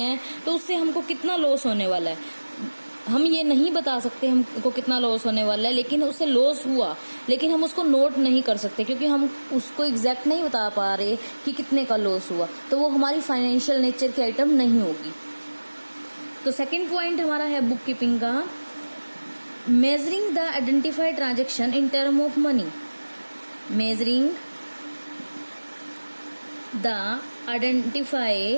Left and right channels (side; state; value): both; inverted; correlation -1.00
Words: तो उससे हमको कितना लॉस होने वाला है हम ये नहीं बता सकते हमको कितना लॉस होने वाला है, लेकिन उससे लॉस हुआ, लेकिन हम उसको नोट नहीं कर सकते क्योंकि हम उसको एग्जैक्ट नहीं बता पा रहे कि कितने का लॉस हुआ, तो वो हमारी फाइनेंशियल नेचर की आइटम नहीं होगी। तो सेकंड पॉइंट हमारा है बुक कीपिंग का, measuring the identified transaction in term of money. Measuring the